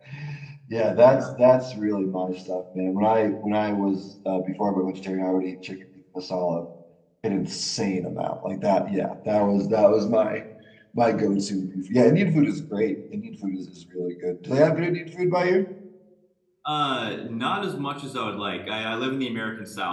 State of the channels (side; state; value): both; identical; correlation 1.00